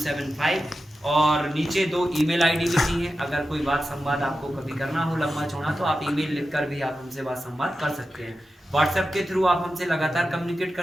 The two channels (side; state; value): both; normal; correlation 0.92